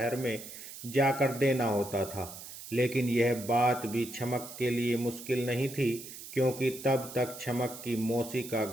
में जाकर देना होता था। लेकिन यह बात भी छमक के लिए मुश्किल नहीं थी, क्योंकि तब तक छमक की मौसी का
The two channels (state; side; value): noise; right; hiss, 13 dB below the sound